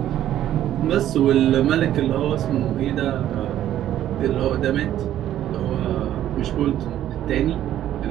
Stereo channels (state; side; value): quieter; left; 12.0 dB